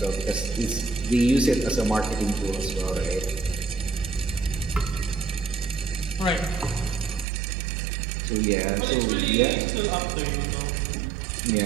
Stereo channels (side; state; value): left; drops out; at 7.2 s